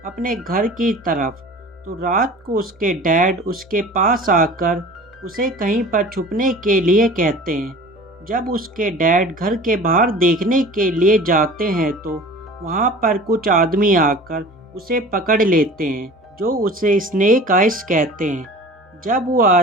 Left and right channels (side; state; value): both; normal; correlation 0.41